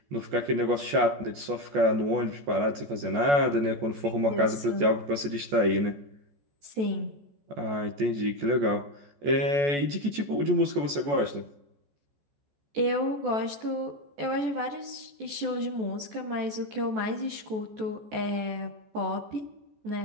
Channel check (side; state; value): left; late; 14 ms